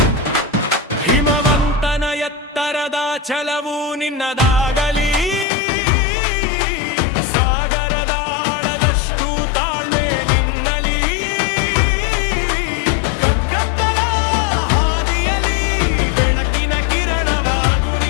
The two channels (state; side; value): drops out; right; at 5.5 s